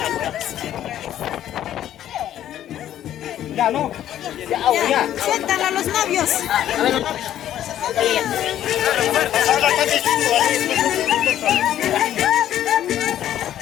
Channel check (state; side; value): quieter; right; 11.6 dB